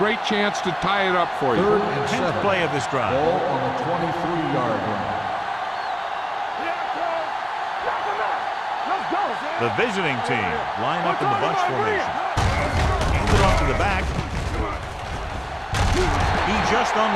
great chance to tie it up for you. 3rd and 10th 7. play of this drive. Ball on the 23-yard line. Let's go. The visiting team line up in the bunch formation. Hand it off to the back. He just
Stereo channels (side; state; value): both; identical; correlation 1.00